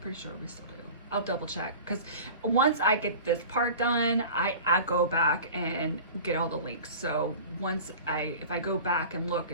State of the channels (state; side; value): inverted; both; correlation -0.39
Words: sure we still do. I'll double check, because once I get this part done, I go back and get all the links. So if I go back and look